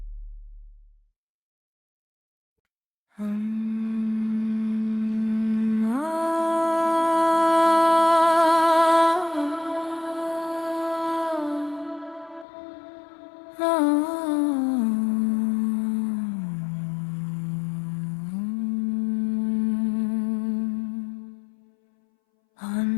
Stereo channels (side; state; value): right; drops out; at 12.5 s